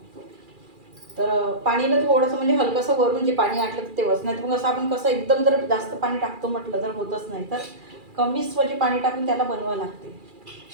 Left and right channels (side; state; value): left; late; 2.4 ms